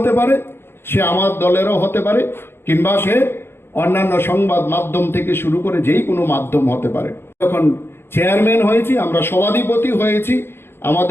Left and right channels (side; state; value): right; late; 0.11 ms